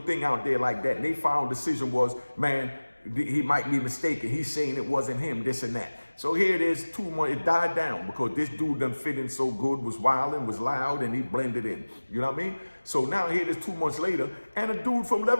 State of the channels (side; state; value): both; inverted; correlation -1.00